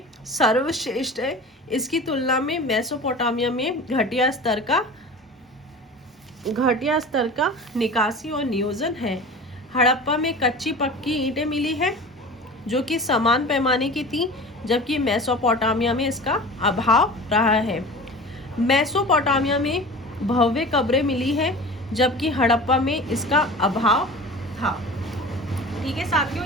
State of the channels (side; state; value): both; normal; correlation 0.36